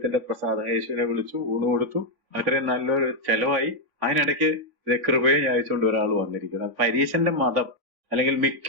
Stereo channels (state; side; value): late; left; 3.5 ms